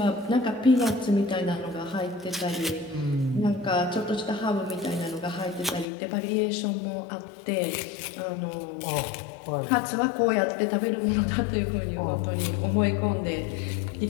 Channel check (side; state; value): right; drops out; at 5.9 s